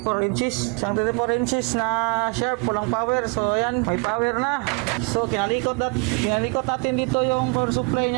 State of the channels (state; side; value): quieter; left; 31.0 dB